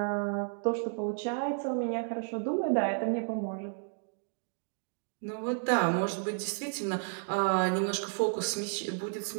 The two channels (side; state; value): left; silent; 56 dB below the other